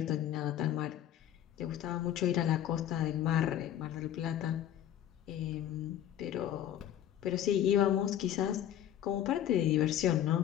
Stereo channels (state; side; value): quieter; right; 11.1 dB